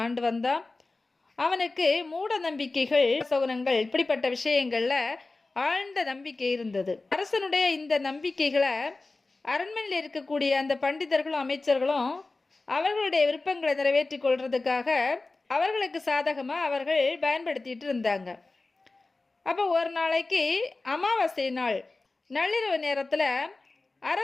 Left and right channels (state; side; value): quieter; right; 3.4 dB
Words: ஆண்டு வந்தான். அவனுக்கு மூட நம்பிக்கைகள், சகுனங்கள், இப்படிப்பட்ட விஷயங்களில் ஆழ்ந்த நம்பிக்கை இருந்தது. அரசனுடைய இந்த நம்பிக்கைகளை அரண்மனையில் இருக்கக்கூடிய அந்த பண்டிதர்களும் அமைச்சர்களும் அவர்களுடைய விருப்பங்களை நிறைவேற்றி கொள்றதுக்காக அவர்களுக்கு சாதகமாக அவர்கள் பயன்படுத்திட்டு இருந்தாங்க. அப்போ ஒரு நாளைக்கு அமாவாசை நாள் நள்ளிரவு நேரத்தில்